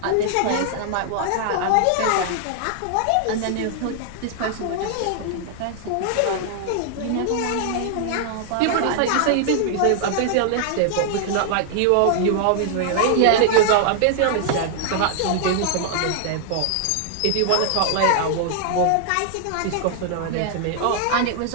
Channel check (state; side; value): different; both; correlation 0.00